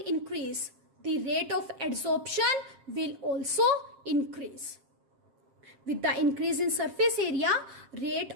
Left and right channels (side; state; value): left; late; 7.5 ms